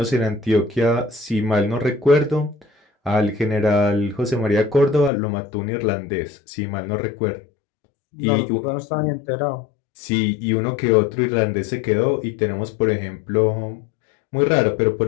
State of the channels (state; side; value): drops out; right; at 5.1 s